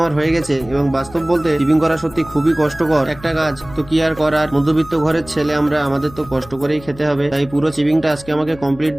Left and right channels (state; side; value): noise; left; hum, 19 dB below the sound